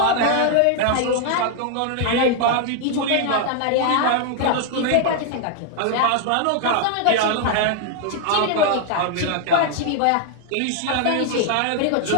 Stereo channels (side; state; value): both; different; correlation 0.00